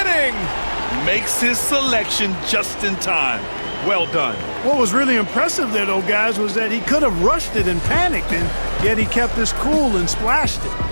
Makes his selection just in time. Well done. What was really impressive there, though, guys, was that he could have rushed it and panicked, and yet he kept his cool and splashed it.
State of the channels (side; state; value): both; inverted; correlation -1.00